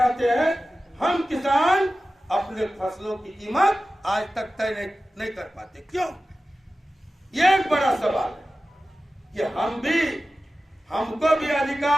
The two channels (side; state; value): both; normal; correlation 0.95